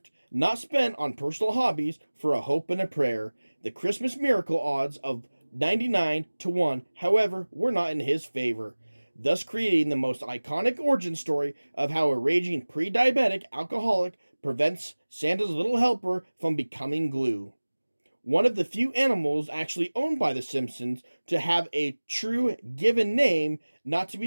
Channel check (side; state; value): both; inverted; correlation -1.00